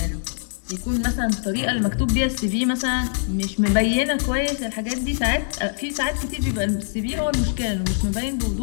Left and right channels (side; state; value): right; silent; 63 dB below the other